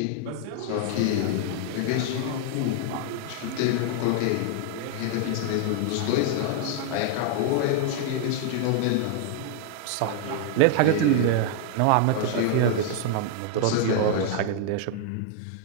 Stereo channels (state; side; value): different; both; correlation 0.00